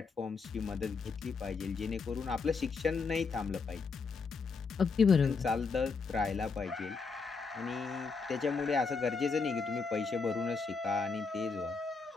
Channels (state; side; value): quieter; right; 4.8 dB